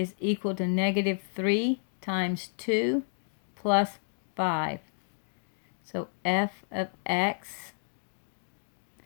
equal to negative 3 times 2 plus 5. So f of x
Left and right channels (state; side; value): silent; right; 57 dB below the other